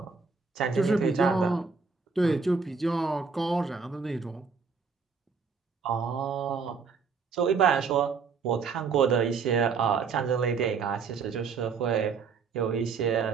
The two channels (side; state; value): left; quieter; 5.3 dB